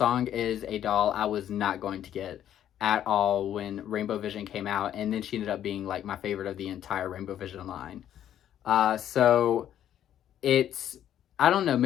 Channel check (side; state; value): right; quieter; 10.8 dB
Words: is a doll I was not going to get at all when Rainbow Vision came out, and then she ended up being, like, my favorite of the entire Rainbow Vision line. So it's, I don't know,